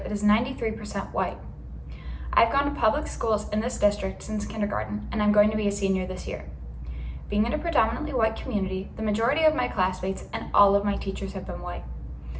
that is 93% white. I've gone to public schools in this district since kindergarten, and I'm going to be a senior this year. Being in a predominantly white community, the majority of my classmates and all of my teachers have been white.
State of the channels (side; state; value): both; identical; correlation 1.00